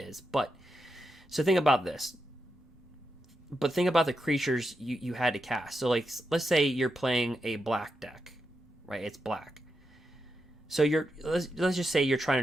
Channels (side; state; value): both; normal; correlation 0.86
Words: But so think about this. But think about the creatures you had to cast. So like let's say you're playing a black deck, right? It's black. So let's just say you're trying